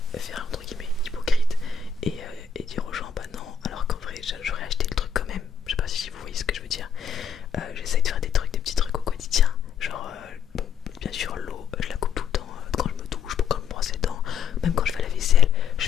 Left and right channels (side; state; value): right; quieter; 6.8 dB